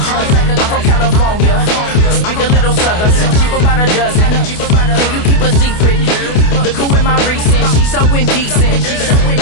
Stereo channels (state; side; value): late; right; 28 ms